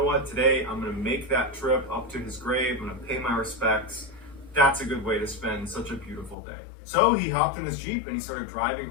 what, today I'm going to make that trip up to his grave, I'm going to pay my respects. That's a good way to spend such a beautiful day. So he hopped in his Jeep and he started driving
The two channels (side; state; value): right; drops out; at 6.4 s